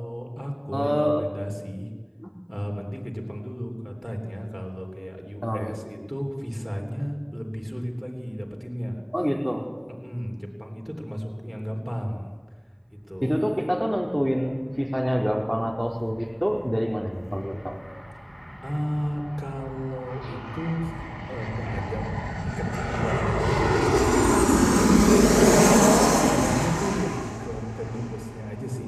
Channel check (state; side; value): identical; both; correlation 1.00